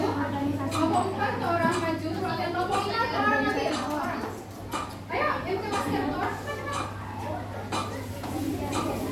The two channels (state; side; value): identical; both; correlation 1.00